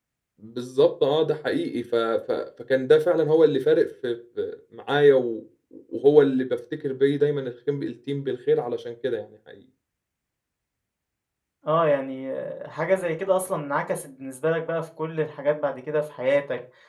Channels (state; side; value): identical; both; correlation 1.00